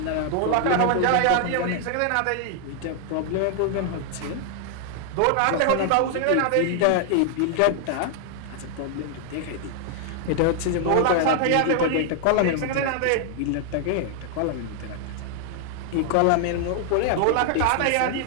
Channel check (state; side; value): different; both; correlation 0.00